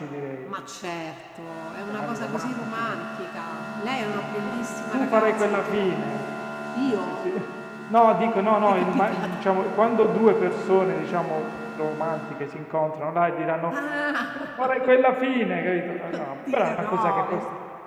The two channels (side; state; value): both; identical; correlation 1.00